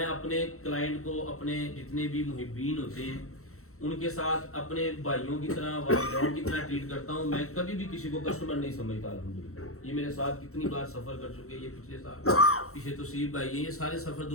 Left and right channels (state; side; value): late; right; 0.63 ms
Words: اپنے کلائنٹ کو اپنے جتنے بھی محبین ہوتے ہیں ان کے ساتھ اپنے بھائیوں کی طرح والدین کی طرح ٹریٹ کرتا ہوں. میں کبھی بھی کسی کو کسٹمر نہیں سمجھتا. الحمدللہ یہ میرے ساتھ کتنی بار سفر کر چکے ہیں. یہ پچھلے سال پیچھے توصیف بھائی یہ سارے سفر